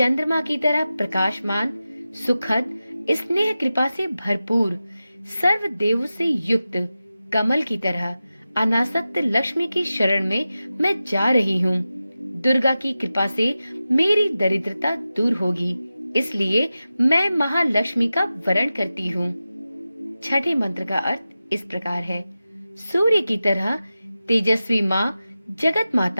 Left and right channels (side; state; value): both; inverted; correlation -0.94